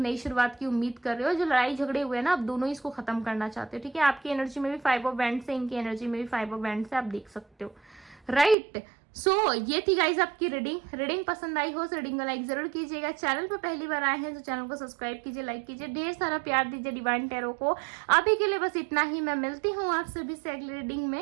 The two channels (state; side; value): drops out; left; at 8.6 s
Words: शुरुआत की उम्मीद कर रहे हो। जो लड़ाई झगड़े हुए ना, आप दोनों ही इसको खत्म करना चाहते हो। ठीक है, आपकी एनर्जी में भी 5 ऑफ वैंड्स है, इनकी एनर्जी में भी 5 ऑफ वैंड्स है, आप देख सकते हो, राइट। सो ये थी गाइज आपकी रीडिंग पसंद आई हो तो रीडिंग को लाइक जरूर कीजिएगा। चैनल पर पहली बार आए हैं तो चैनल को सब्सक्राइब कीजिए, लाइक कीजिए, ढेर सारा प्यार दीजिए डिवाइन टैरो को। अभी के लिए बस इतना ही, मैं मिलती हूँ आप सभी से अगली रीडिंग